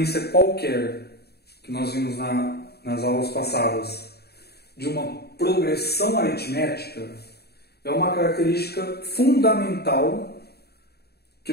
qualquer, que nós vimos nas aulas passadas, de uma progressão aritmética, é uma característica fundamental que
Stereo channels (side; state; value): right; late; 0.47 ms